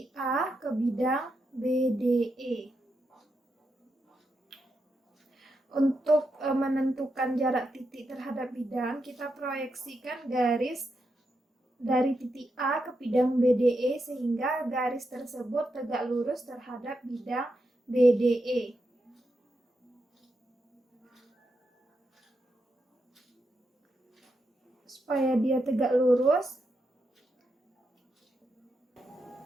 A ke bidang BDE. Untuk menentukan jarak titik terhadap bidang, kita proyeksikan garis dari titik A ke bidang BDE sehingga garis tersebut tegak lurus terhadap bidang BDE. Supaya dia tegak lurus,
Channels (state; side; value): normal; both; correlation 0.85